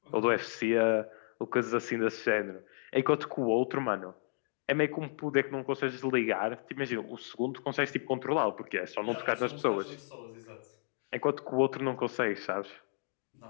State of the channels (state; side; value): silent; right; digital silence